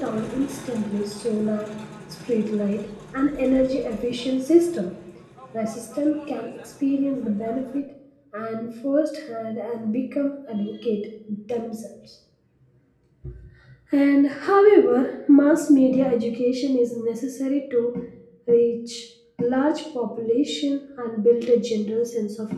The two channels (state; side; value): identical; both; correlation 1.00